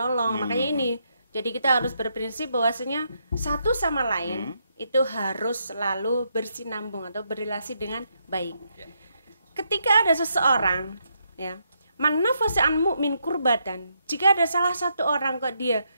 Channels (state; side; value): inverted; both; correlation -0.78